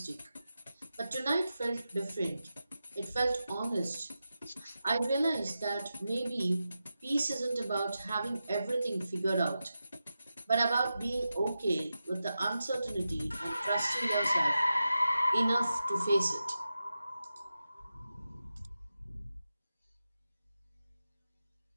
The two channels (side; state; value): both; inverted; correlation -0.91